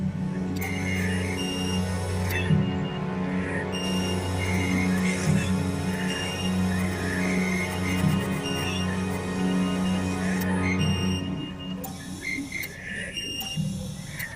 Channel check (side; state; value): both; identical; correlation 1.00